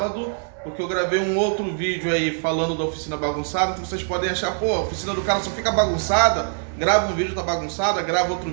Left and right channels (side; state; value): left; silent; 63 dB below the other